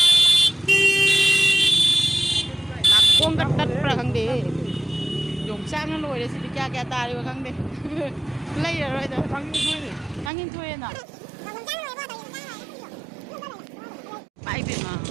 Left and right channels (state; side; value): drops out; left; at 10.3 s